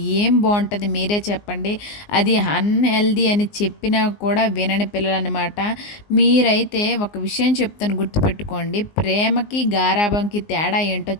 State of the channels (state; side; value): late; right; 19 ms